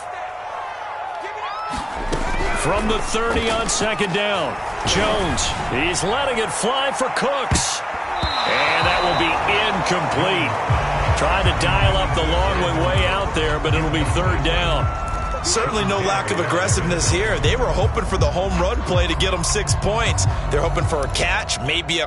From the 30 on second down, Jones, he's letting it fly for Cooks. And that will be incomplete. Trying to dial up the long one way out there, but it'll be third down. Certainly no lack of aggressiveness here. They were hoping for the home run play to get them 6 points. They're hoping for a catch, maybe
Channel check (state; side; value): identical; both; correlation 1.00